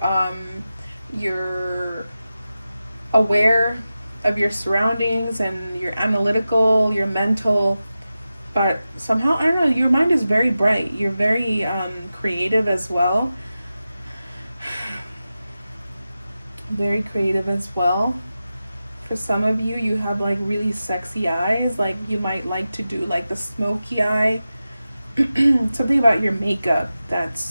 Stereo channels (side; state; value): both; inverted; correlation -0.93